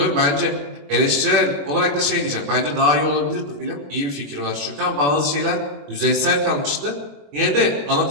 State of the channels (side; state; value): left; late; 21 ms